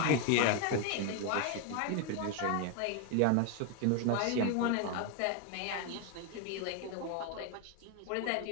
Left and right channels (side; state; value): both; different; correlation 0.01